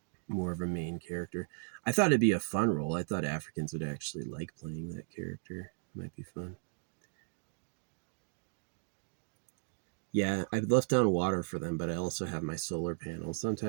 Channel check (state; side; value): silent; left; digital silence